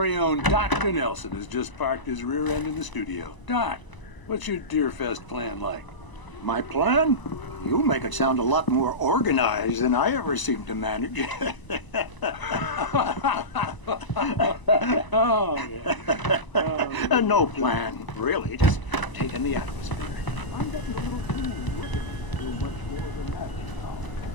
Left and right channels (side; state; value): right; late; 1.0 ms